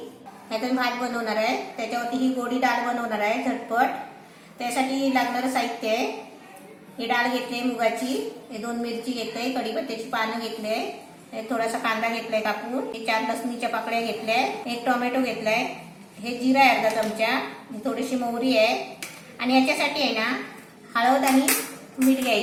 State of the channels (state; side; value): identical; both; correlation 1.00